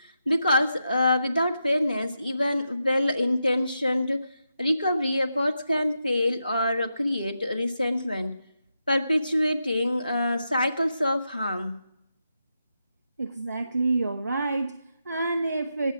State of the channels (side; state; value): both; inverted; correlation -0.86